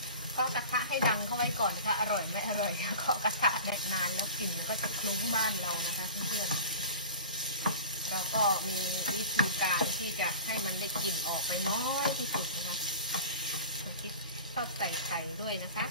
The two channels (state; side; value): inverted; both; correlation -0.37